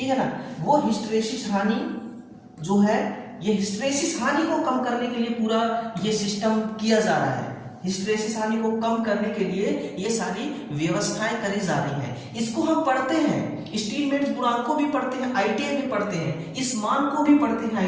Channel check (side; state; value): both; identical; correlation 1.00